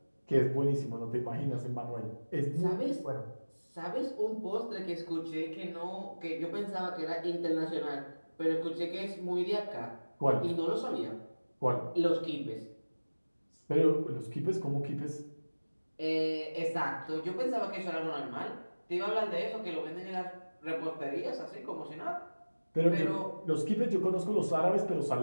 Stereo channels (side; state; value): both; inverted; correlation -1.00